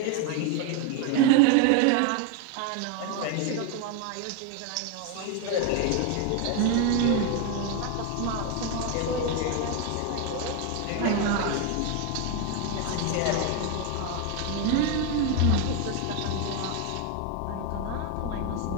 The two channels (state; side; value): different; both; correlation 0.01